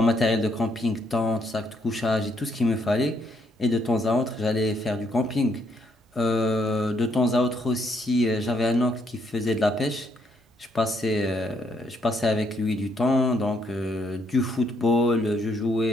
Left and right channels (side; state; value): both; normal; correlation 0.72